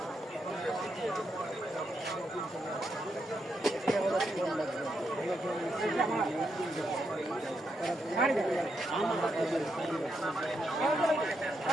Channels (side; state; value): both; normal; correlation 0.81